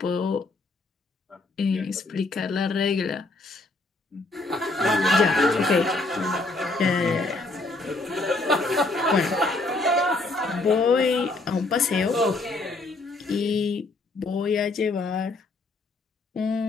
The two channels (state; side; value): quieter; right; 3.2 dB